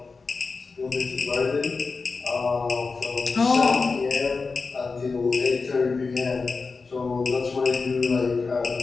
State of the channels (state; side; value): quieter; right; 4.4 dB